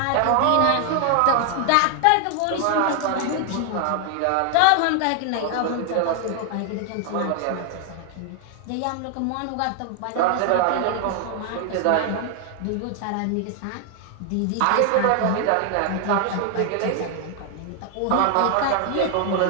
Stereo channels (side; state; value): both; different; correlation 0.00